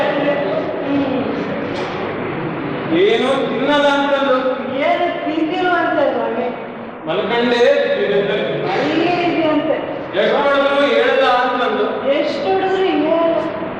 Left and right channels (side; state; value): both; identical; correlation 1.00